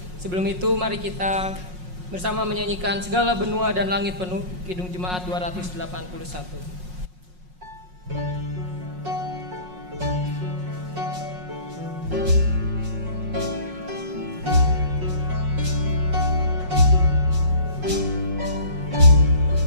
Sebelum itu mari kita bersama menyanyikan Segala Benua dan Langit Penuh, Kidung Jemaat 281.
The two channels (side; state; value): left; late; 5.5 ms